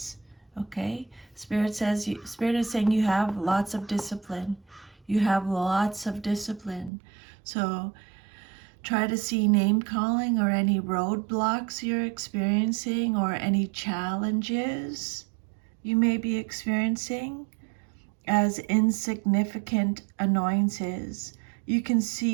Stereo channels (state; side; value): drops out; left; at 6.9 s